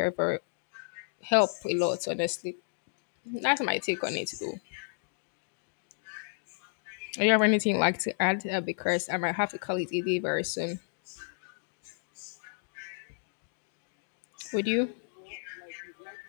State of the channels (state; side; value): silent; right; digital silence